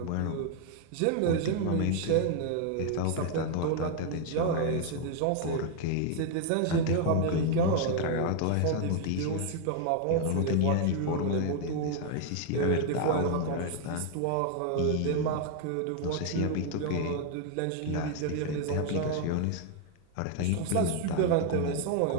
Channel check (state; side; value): different; both; correlation 0.00